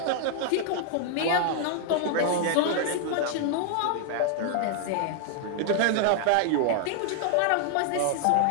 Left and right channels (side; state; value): both; different; correlation 0.00